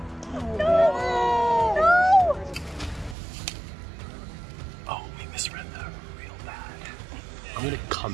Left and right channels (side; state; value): left; drops out; at 3.2 s